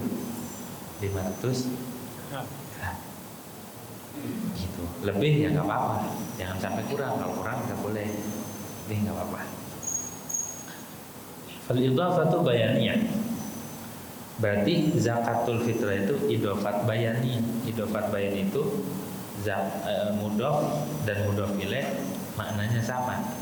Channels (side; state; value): both; identical; correlation 1.00